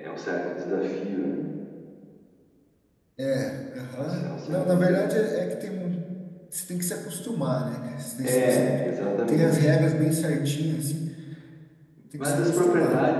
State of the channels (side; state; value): both; identical; correlation 1.00